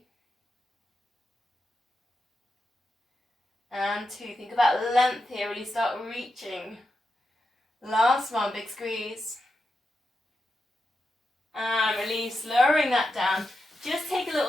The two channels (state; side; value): normal; both; correlation 0.88